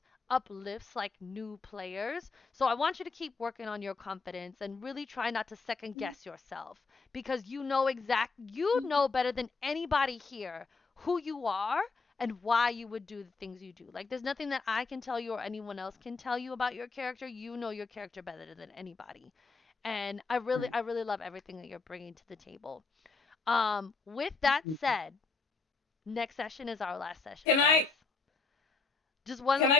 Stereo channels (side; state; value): right; quieter; 4.3 dB